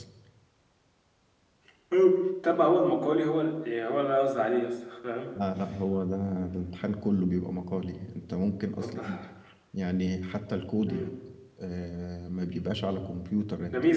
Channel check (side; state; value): both; identical; correlation 1.00